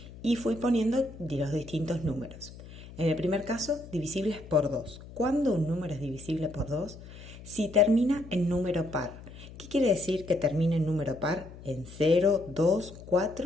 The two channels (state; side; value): noise; left; hum, 16 dB below the sound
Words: y fui poniendo los distintos números. En el primer caso, divisibles por 2. ¿Cuándo un número es divisible por 2? Si termina en número par. ¿Qué quiere decir que termine en número par? En 0, 2,